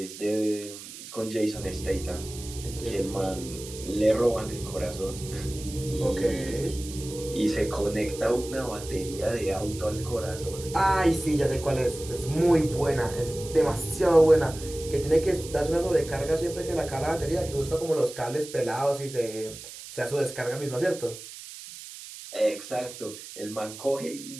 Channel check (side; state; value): right; noise; hiss, 13 dB below the sound